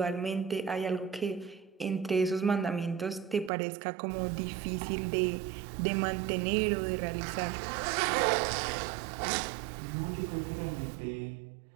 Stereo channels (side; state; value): left; drops out; at 3.5 s